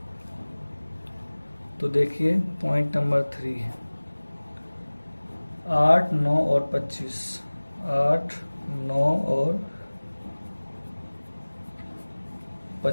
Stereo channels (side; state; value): both; inverted; correlation -1.00